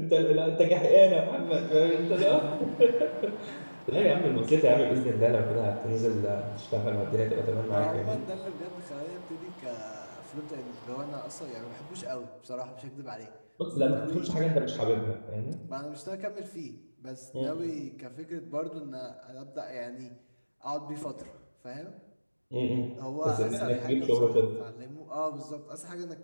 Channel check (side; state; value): both; inverted; correlation -1.00